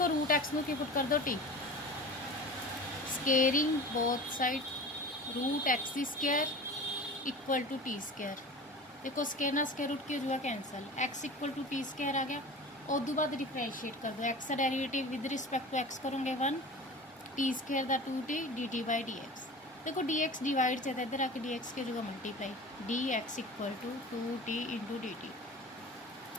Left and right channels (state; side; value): normal; both; correlation 0.36